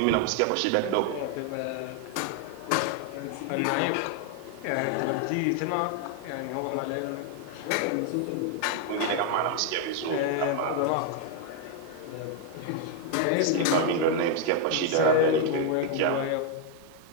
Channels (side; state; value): both; different; correlation 0.00